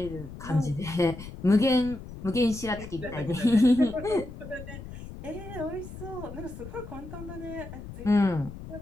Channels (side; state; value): left; noise; rumble, 12 dB below the sound